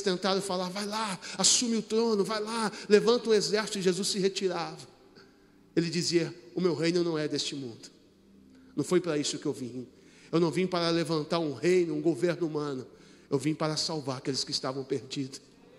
tentaram falar: vai lá, assume o trono, vai lá, levanta um exército, e Jesus se retirava. Ele dizia: o meu reino não é deste mundo. Não foi para isso que eu vim. Eu não vim para levantar um reino, um governo humano. Eu vim para salvar aqueles que estavam perdidos.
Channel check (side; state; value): both; identical; correlation 1.00